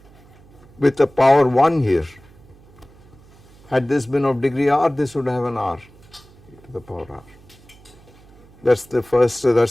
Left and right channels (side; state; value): right; noise; hum, 26 dB below the sound